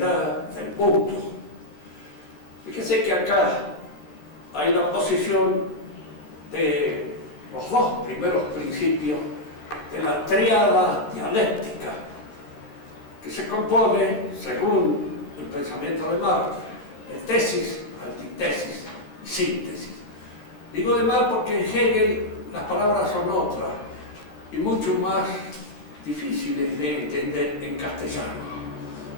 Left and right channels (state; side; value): late; right; 13 ms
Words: del mundo. Fíjese que acá hay la posición de los dos primeros principios de la tríada dialéctica, que se compone, según el pensamiento de Marx, de tesis, antitesis y síntesis. Digo de Marx porque en Hegel las palabras son otras y mucho más difíciles de entender en castellano.